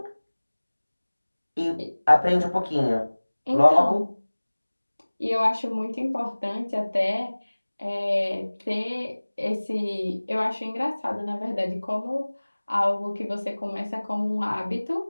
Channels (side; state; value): both; inverted; correlation -1.00